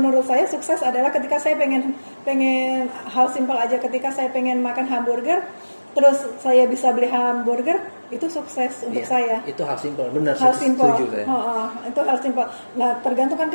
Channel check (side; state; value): both; inverted; correlation -1.00